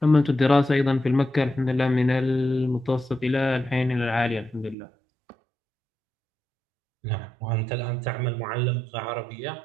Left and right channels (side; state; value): left; drops out; at 4.8 s